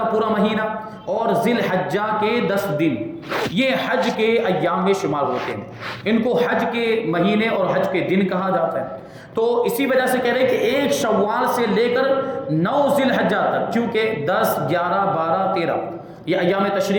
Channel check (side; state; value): both; identical; correlation 1.00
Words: پورا مہینہ اور ذی الحجہ کے 10 دن، یہ حج کے ایام میں شمار ہوتے ہیں. ان کو حج کے مہینے اور حج کے دن کہا جاتا ہے. تو اسی وجہ سے کہہ رہے ہیں کہ ایک شوال سے لے کر 9 ذی الحجہ تک، چونکہ 10، 11، 12، 13 یہ ایام